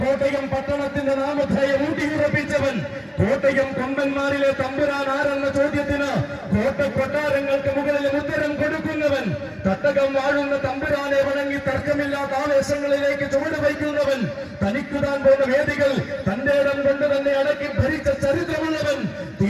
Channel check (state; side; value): identical; both; correlation 1.00